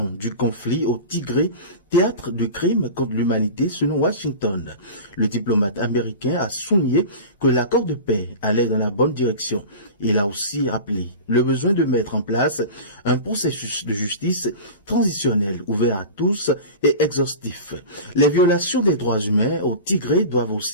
du conflit au Tigré, théâtre de crimes contre l'humanité selon Washington. Le diplomate américain a souligné que l'accord de paix allait dans la bonne direction. Il a aussi rappelé le besoin de mettre en place un processus de justice transitionnel ouvert à tous et exhaustif. Les violations des droits humains au Tigré doivent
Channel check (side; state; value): both; inverted; correlation -0.32